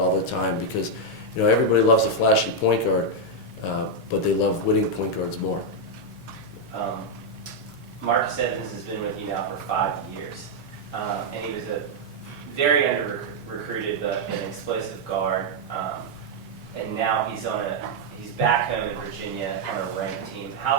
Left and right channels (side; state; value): both; normal; correlation -0.01